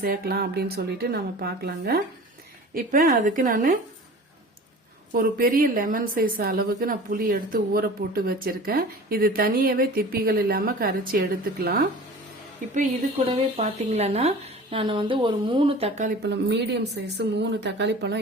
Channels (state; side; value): normal; both; correlation 0.40